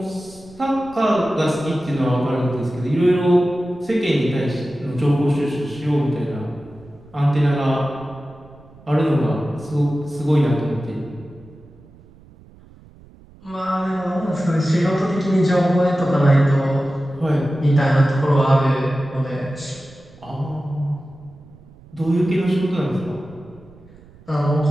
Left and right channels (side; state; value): right; noise; rumble, 24 dB below the sound